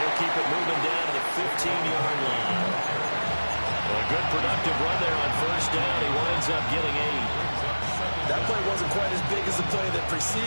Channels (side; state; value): both; inverted; correlation -1.00